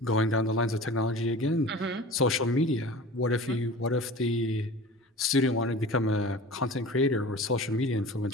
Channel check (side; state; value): both; normal; correlation 0.38